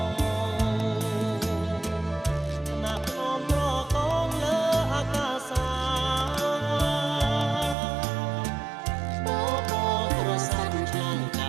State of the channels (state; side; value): drops out; left; at 7.8 s